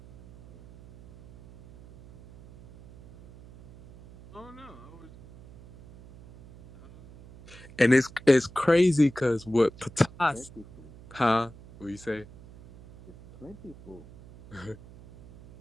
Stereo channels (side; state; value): right; noise; hum, 21 dB below the sound